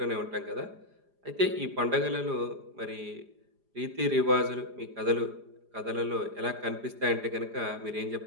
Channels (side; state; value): left; late; 4.9 ms